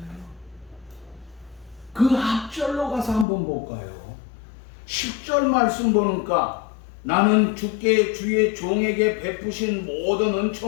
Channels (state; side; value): drops out; right; at 3.2 s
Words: 그 앞절로 가서 한번 볼까요? 10절 말씀 보니까 나는 주께 주의 종에게 베푸신 모든